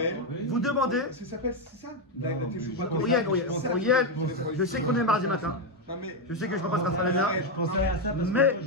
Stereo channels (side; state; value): both; normal; correlation 0.05